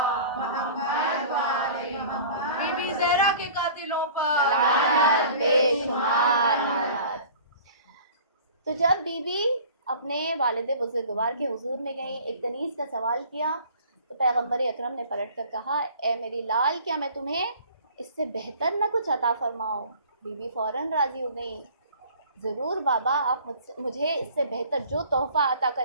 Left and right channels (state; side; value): inverted; both; correlation -0.46